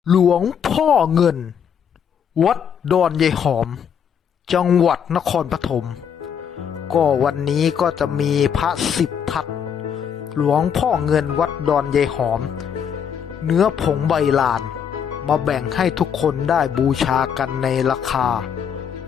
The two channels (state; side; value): quieter; right; 7.9 dB